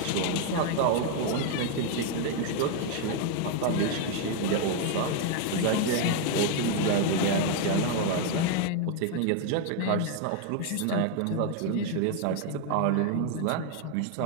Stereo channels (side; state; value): both; different; correlation 0.01